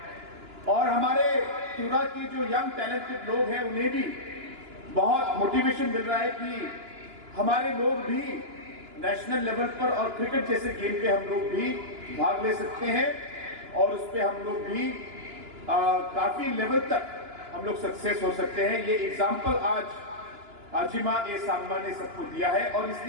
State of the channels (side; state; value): left; late; 2.9 ms